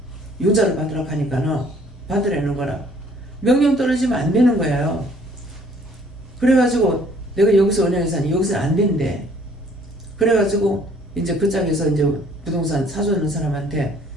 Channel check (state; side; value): normal; both; correlation 0.59